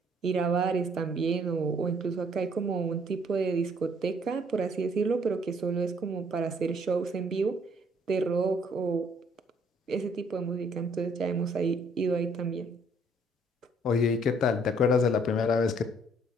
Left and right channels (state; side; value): normal; both; correlation 0.63